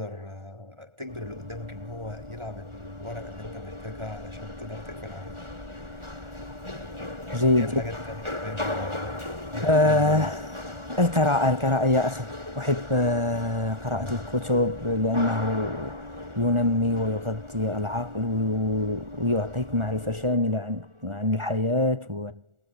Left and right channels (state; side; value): late; left; 1.4 ms